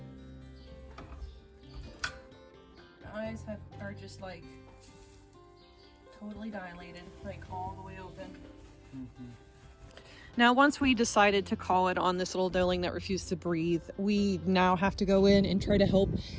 Eyes are just like totally dilated, like all the way open. Now, once we decided to call it on this little duckling that refused to breathe, we now have to go in and try to help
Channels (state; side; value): identical; both; correlation 1.00